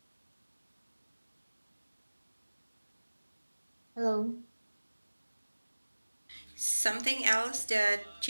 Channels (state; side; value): inverted; both; correlation -1.00